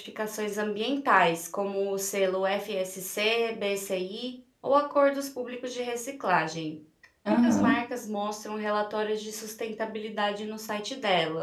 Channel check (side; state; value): both; identical; correlation 1.00